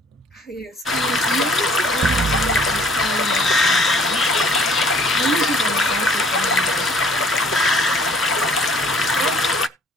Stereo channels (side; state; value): both; normal; correlation 0.55